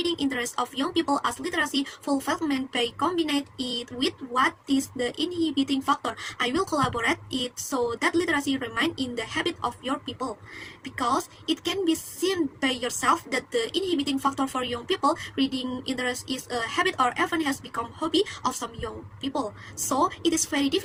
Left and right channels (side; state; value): both; identical; correlation 1.00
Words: interest of young people as literacy fulfillment by combining it with what is the inhibiting factor. I will collaborate it so that literacy remain in the habit of your people, because it can be seen by yourself that the inhibiting factor for young people reading interest is a habit or even has become hobby of some young people. So it is very